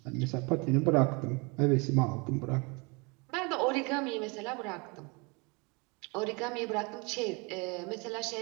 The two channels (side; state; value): left; quieter; 29.6 dB